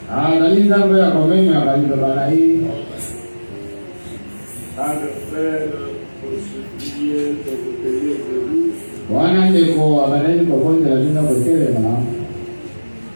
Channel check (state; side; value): inverted; both; correlation -1.00